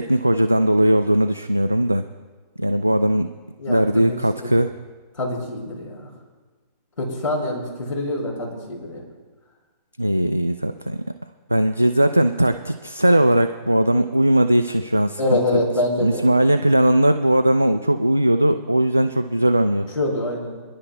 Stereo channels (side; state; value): both; inverted; correlation -0.91